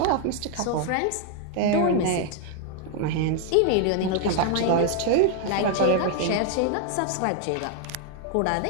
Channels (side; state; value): both; different; correlation 0.00